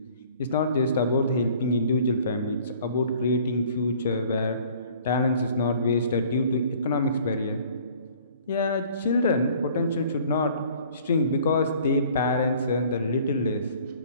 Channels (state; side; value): inverted; both; correlation -0.53